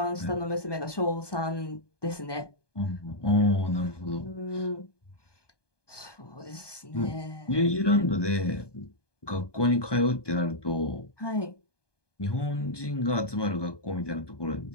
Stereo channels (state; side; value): late; right; 1.2 ms